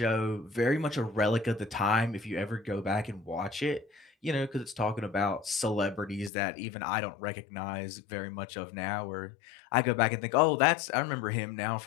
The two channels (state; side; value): drops out; right; at 6.3 s